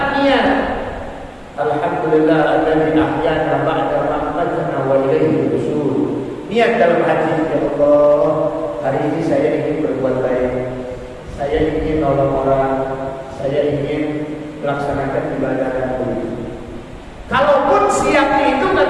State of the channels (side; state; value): both; identical; correlation 1.00